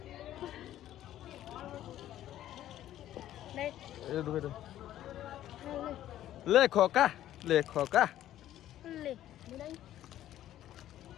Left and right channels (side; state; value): right; quieter; 12.7 dB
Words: লে এই ঢুকাই দে লে খোকা লে